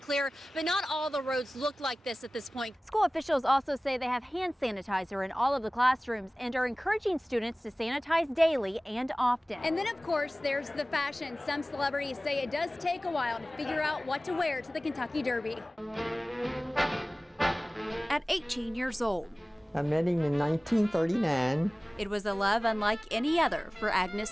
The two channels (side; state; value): both; normal; correlation 0.98